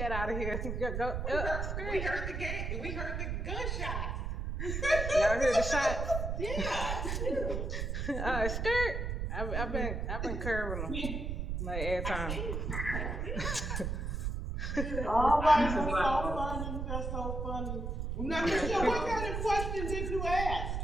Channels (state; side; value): noise; right; rumble, 2 dB below the sound